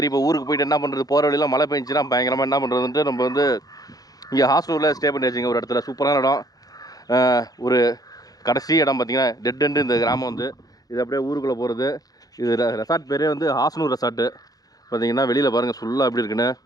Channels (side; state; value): right; late; 0.18 ms